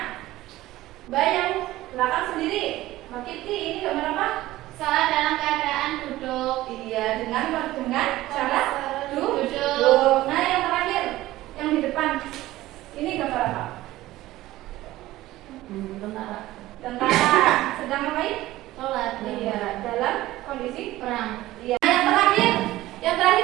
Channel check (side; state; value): left; quieter; 16.5 dB